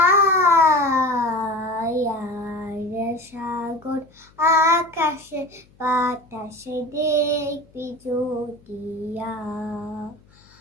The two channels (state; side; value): noise; left; hum, 29 dB below the sound